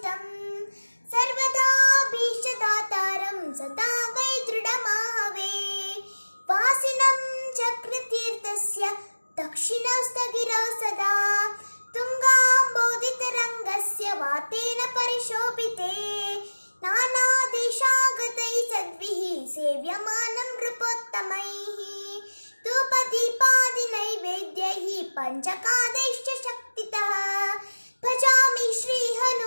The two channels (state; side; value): inverted; both; correlation -1.00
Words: ಸರ್ವದಾ ಭೀಷದಾತಾರಂ ಸದಾ ವೈ ದೃಢಮಾಹವೇ ವಾಸಿನಂ ಚಕ್ರತೀರ್ಥಸ್ಯ ದಕ್ಷಿಣಸ್ಥಗಿರೌ ಸದಾ ತುಂಗಾಂಬೋಧಿತರಂಗಸ್ಯ ವಾತೇನ ಪರಿಶೋಭಿತೆ ನಾನಾ ದೇಶಾಗತೈ ಸದ್ಭಿಃ ಸೇವ್ಯಮಾನಂ ನೃಪೋತ್ತಮೈಃ ಧೂಪದೀಪಾದಿ ನೈವೇದ್ಯೈಃ ಪಂಚಕಾದೈಶ್ಚ ಶಕ್ತಿತಃ ಭಜಾಮಿ ಶ್ರೀ